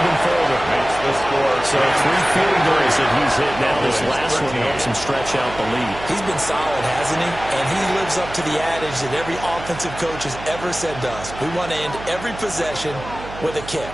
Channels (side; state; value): right; noise; hum, 13 dB below the sound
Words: further. Makes the score. So 3 field goals that he's hit now. This last one helps him stretch out the lead. He's been solid, hasn't he? And he lives up to the adage that every offensive coach has ever said to us. We want to end every possession with a kick.